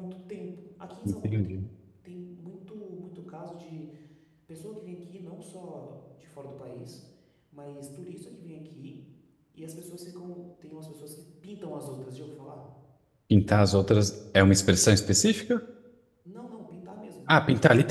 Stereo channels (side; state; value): both; identical; correlation 1.00